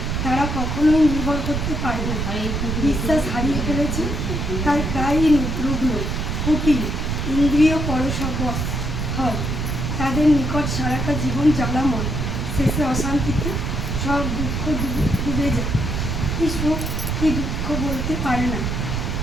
তারা কখনোই নির্ভর করতে পারে না। বিশ্বাস হারিয়ে ফেলেছে, তাই প্রায়ই রুগ্ন কুটিল ইন্দ্রিয় পরশবশ হয়। তাদের নিকট সারাটা জীবন জ্বালাময়, শেষে অশান্তিতে সব দুঃখ ডুবে যায়। কি সুখ কি দুঃখ বলতে পারে না,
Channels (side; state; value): right; noise; rumble, 1 dB below the sound